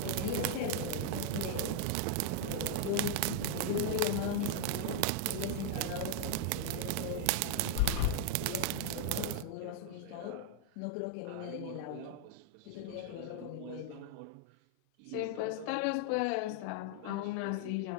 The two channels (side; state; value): both; different; correlation 0.00